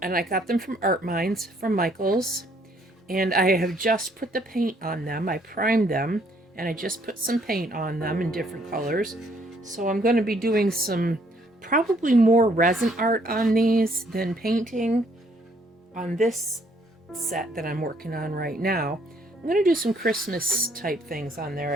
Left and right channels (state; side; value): normal; both; correlation 0.66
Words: And I got them from Art Minds, from Michael's. And I have just put the paint on them. I primed them, and I just put some paint on them in different colors. So I'm going to be doing some, probably more resin art on these than painting on this set that I'm working on right now. I'm going to do some Christmas type things on there,